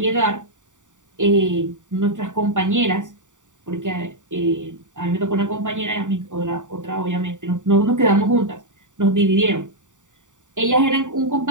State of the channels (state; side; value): late; left; 0.86 ms